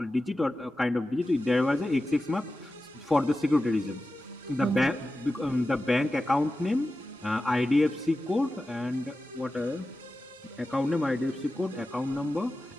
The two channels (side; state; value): both; normal; correlation 0.93